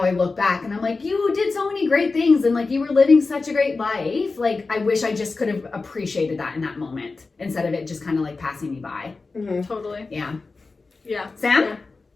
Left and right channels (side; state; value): right; quieter; 3.9 dB